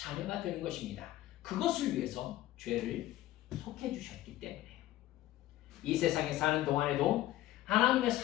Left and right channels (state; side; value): quieter; right; 14.8 dB